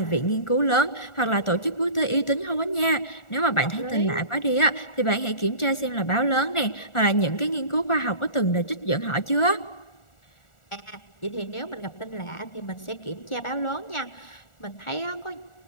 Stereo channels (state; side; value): late; right; 1.4 ms